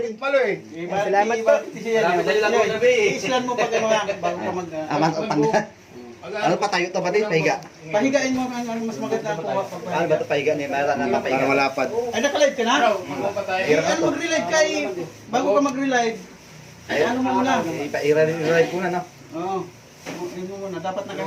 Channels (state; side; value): identical; both; correlation 1.00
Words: Salamat po. Islan mo pag bago ka mag... Ano pa tayo to ba din? Pahiga. Pahigain mo ang mas maganda ang kuha pag Ano ba to pahiga ni Mara na pahiga? Para malapad. Ay, naka-live ka na? Ano mag-relive ka eh. Bago ka mag-relive. Ay, ano mo muna? I-relive ko na no. Oo. Ano mo muna? Dapat